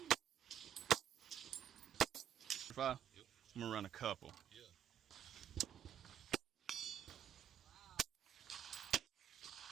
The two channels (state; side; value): quieter; left; 9.7 dB